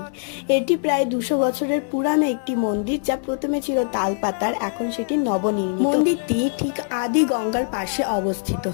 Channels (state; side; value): silent; right; digital silence